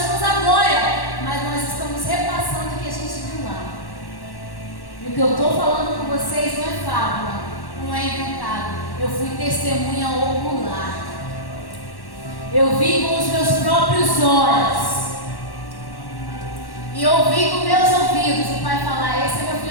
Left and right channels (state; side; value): late; right; 1.1 ms